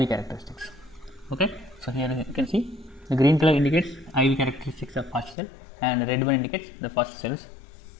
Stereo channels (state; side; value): drops out; right; at 5.4 s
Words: characteristics. Okay, so here you can see the green color indicates IV characteristics of first cell and red one indicates the first cells.